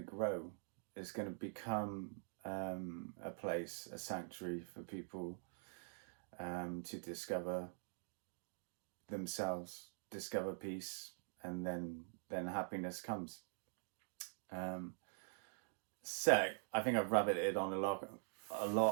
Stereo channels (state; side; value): silent; left; digital silence